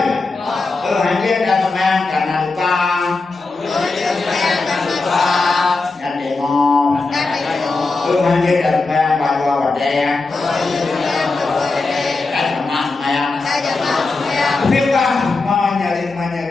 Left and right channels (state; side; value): quieter; right; 3.7 dB